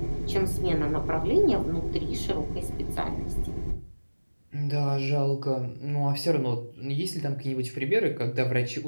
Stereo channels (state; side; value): inverted; both; correlation -1.00